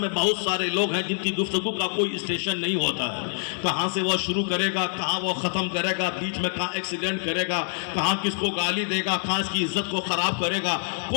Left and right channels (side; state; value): right; silent; 57 dB below the other